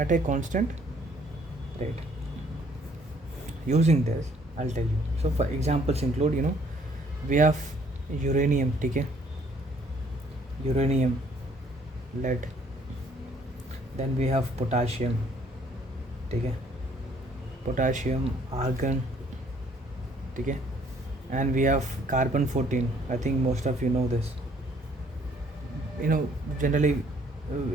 Using this, I'll tell you. So for examples include, we have uranium, okay, uranium, lead, then we have potassium, okay, potassium, argon, okay, and we have carbon 14. I think most of you know this. Generally,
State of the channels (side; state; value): both; normal; correlation 0.62